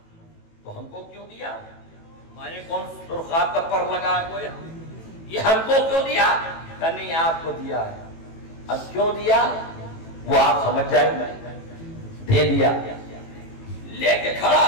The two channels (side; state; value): right; late; 18 ms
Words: تو ہم کو کیوں دیا؟ ہمارے کون سرخاب کا پر لگا ہے کوئی؟ یہ ہم کو کیوں دیا؟ کہ نہیں آپ کو دیا ہے۔ اب کیوں دیا وہ آپ سمجھ جائیں گے، دے دیا۔ لے کے کھڑا